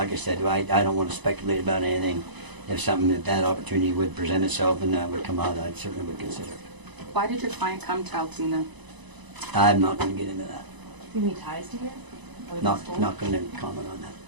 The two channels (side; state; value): left; late; 1.0 ms